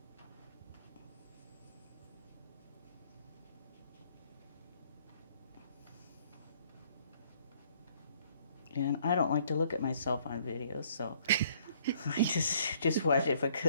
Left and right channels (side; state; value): both; inverted; correlation -0.62